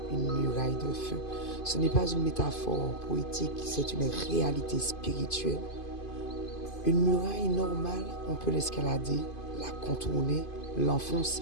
une muraille de feu ». Ce n'est pas une métaphore poétique, c'est une réalité spirituelle. Une muraille normale, on peut l'escalader, la contourner,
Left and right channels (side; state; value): right; late; 2.5 ms